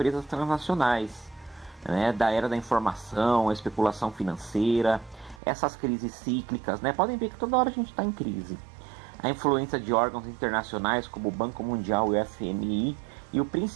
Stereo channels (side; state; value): left; drops out; at 5.4 s